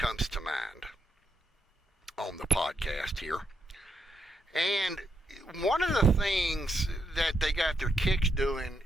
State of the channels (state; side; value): normal; both; correlation 0.80